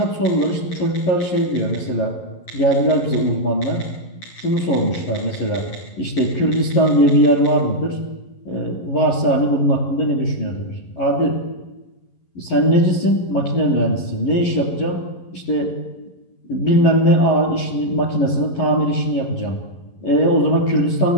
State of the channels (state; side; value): late; right; 11 ms